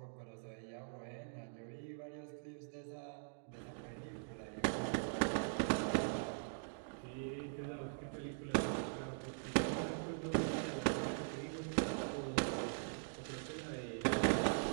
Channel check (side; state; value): left; silent; digital silence